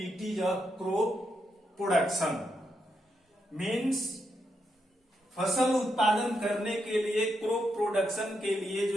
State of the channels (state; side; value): normal; both; correlation 0.82